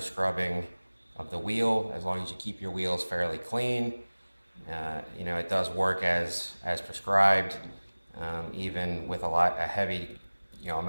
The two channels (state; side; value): inverted; both; correlation -1.00